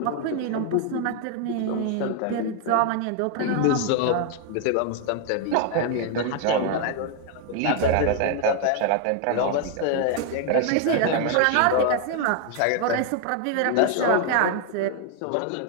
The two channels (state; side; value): different; both; correlation 0.00